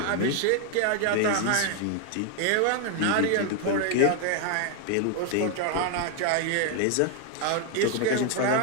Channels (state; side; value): different; both; correlation 0.00